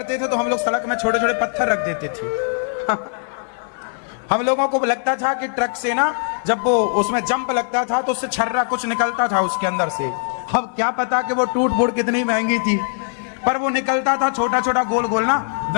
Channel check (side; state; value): right; silent; 55 dB below the other